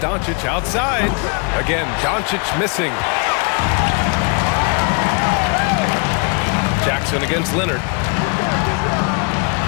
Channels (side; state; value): right; quieter; 35.2 dB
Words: outside. Again, Doncic missing. Jackson against Leonard.